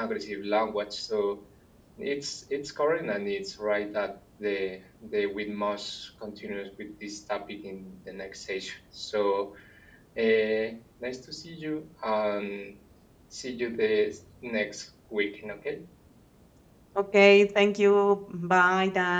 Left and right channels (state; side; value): identical; both; correlation 1.00